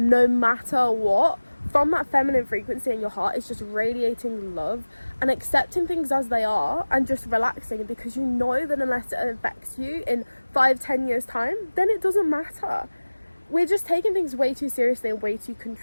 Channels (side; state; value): both; inverted; correlation -1.00